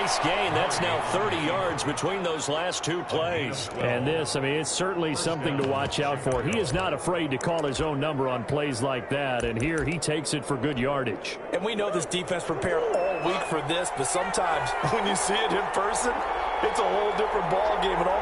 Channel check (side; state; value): both; identical; correlation 1.00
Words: gain. That's now 30 yards between those last two plays. And this, I mean, it's certainly something to watch out for. He is not afraid to call his own number on plays like that, and here he takes it for good yardage. And we know this defense prepared all week for this, but sometimes when you see it in person, it's a whole different ball game, and all